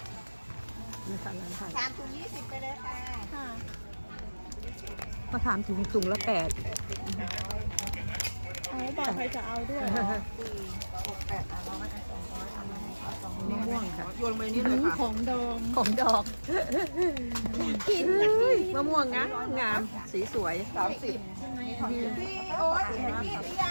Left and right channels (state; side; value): inverted; both; correlation -1.00